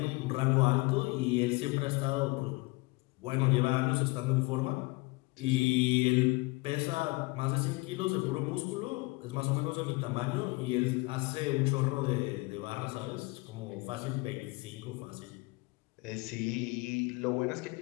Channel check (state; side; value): quieter; right; 24.6 dB